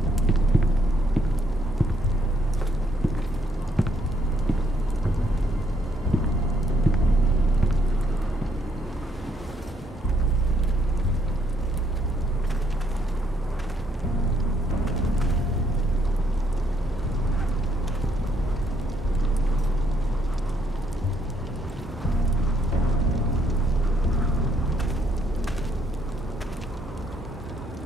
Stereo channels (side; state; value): both; normal; correlation 0.70